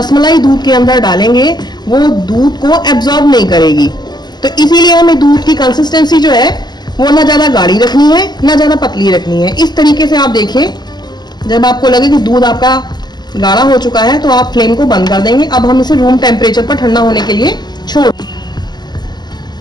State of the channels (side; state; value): right; late; 0.21 ms